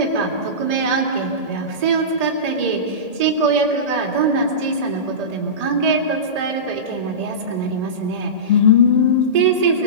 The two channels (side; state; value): left; late; 1.8 ms